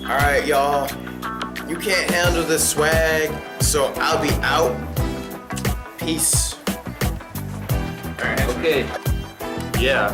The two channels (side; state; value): both; identical; correlation 1.00